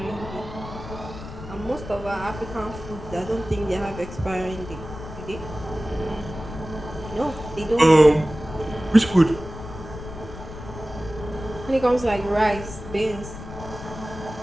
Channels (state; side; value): noise; left; rumble, 11 dB below the sound